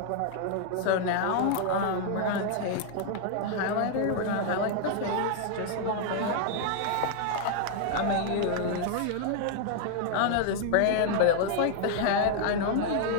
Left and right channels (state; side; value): different; both; correlation 0.00